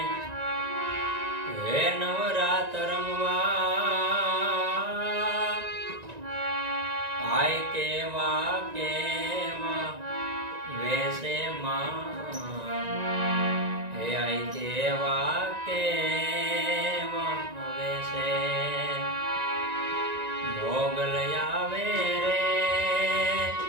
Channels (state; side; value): late; left; 1.9 ms